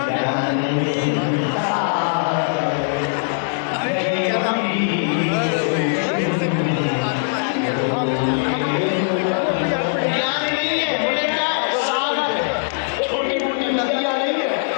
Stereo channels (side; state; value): right; silent; 65 dB below the other